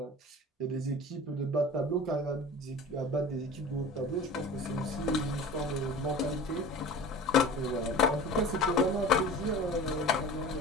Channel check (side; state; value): both; normal; correlation 0.38